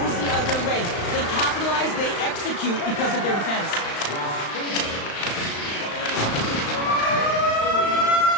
the other way. They capitalize, they execute because of their defense.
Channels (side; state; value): right; late; 35 ms